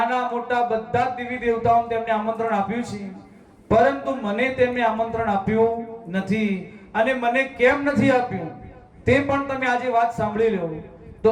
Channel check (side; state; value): both; identical; correlation 1.00